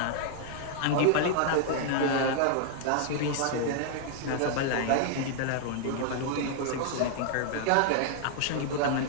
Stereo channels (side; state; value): both; different; correlation 0.00